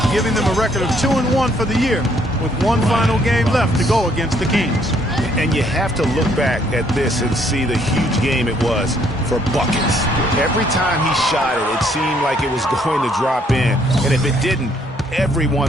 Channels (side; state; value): both; normal; correlation 0.67